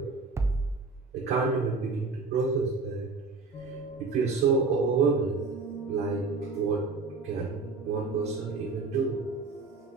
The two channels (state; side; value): quieter; left; 4.0 dB